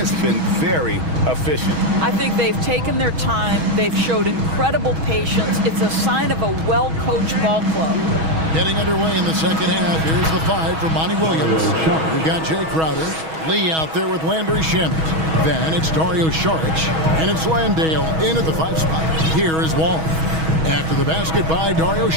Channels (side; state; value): left; late; 6.2 ms